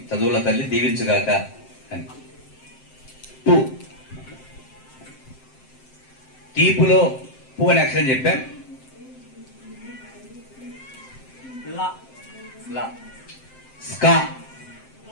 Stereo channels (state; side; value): late; right; 7.7 ms